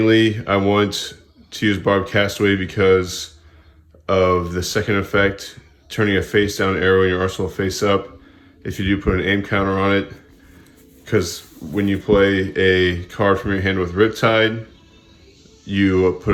I want to use Barbed Castaway because of the second effect, turning a face down arrow in your arsenal face up. If you do put an aim counter on it, because when you play a card from your hand with Riptide, you put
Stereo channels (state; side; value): identical; both; correlation 1.00